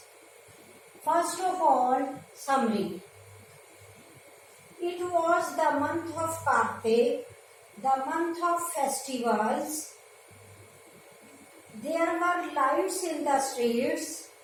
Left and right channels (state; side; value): identical; both; correlation 1.00